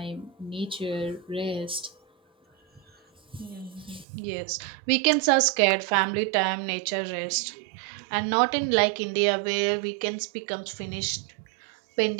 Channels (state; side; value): drops out; left; at 4.0 s